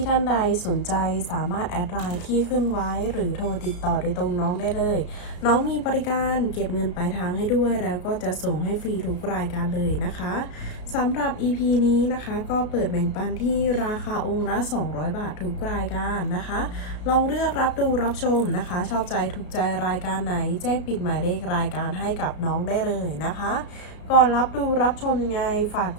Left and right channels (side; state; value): right; late; 33 ms